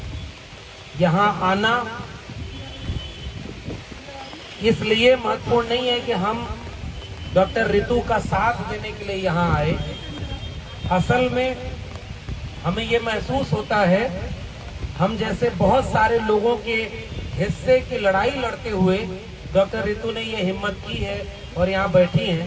यहाँ आना इसलिए महत्वपूर्ण नहीं है कि हम डॉक्टर रितु का साथ देने के लिए यहाँ आए। असल में हमें ये महसूस होता है, हम जैसे बहुत सारे लोगों के हिस्से की लड़ाई लड़ते हुए डॉक्टर रितु ने ये हिम्मत की है और यहाँ बैठी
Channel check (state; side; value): identical; both; correlation 1.00